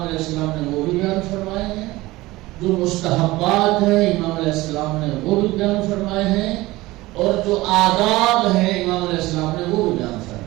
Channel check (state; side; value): quieter; left; 19.3 dB